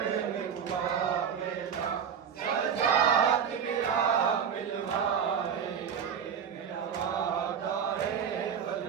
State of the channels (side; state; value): left; quieter; 7.5 dB